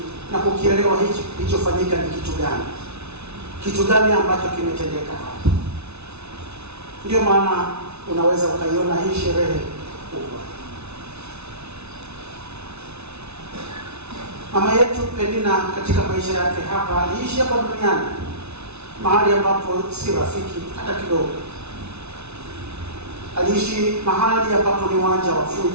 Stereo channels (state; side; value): late; left; 0.81 ms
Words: na kukielewa hichi kilichofanyika ni kitu gani. Kitu gani ambacho kimetendeka hapa. Ndio maana unaweza ukaiona hii sherehe kubwa. Mama yetu Penina katika maisha yake hapa aliishi hapa duniani mahali ambapo si rafiki hata kidogo. Aliishi mahali ambapo ni uwanja wa